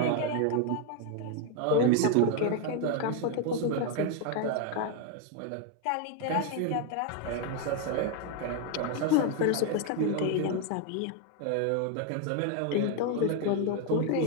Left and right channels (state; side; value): different; both; correlation 0.01